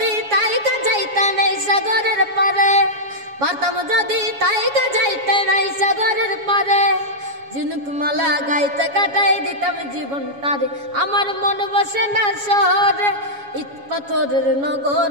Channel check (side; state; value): left; late; 7.2 ms